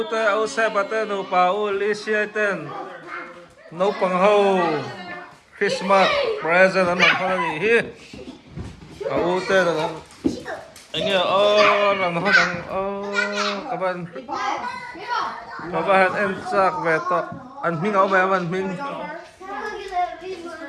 au sebate no paul isiaten no pangho Kristmas present an phani hi aute da anh làm nó đang các bạn em chắc về to anh minh áo về anh minh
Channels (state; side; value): identical; both; correlation 1.00